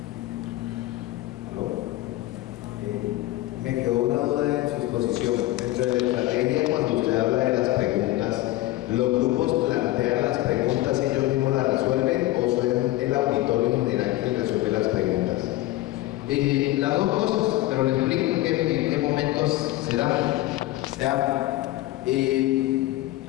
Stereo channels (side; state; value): right; quieter; 16.8 dB